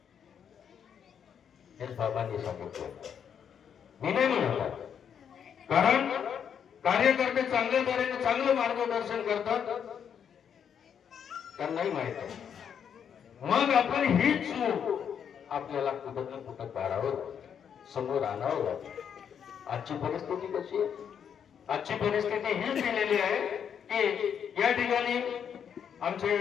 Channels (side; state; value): right; quieter; 8.0 dB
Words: हे बाबांनी सांगितलं, मी नाही म्हणत. कारण कार्यकर्ते चांगल्या तऱ्हेने चांगलं मार्गदर्शन करतात, त्यांनाही माहित आहे. मग आपण ही चूक आपल्याला कुठं ना कुठं काढावं, समोर आणावं लागेल. आजची परिस्थिती कशी आहे? आजची परिस्थिती हीच दिलेली आहे की या ठिकाणी आमचे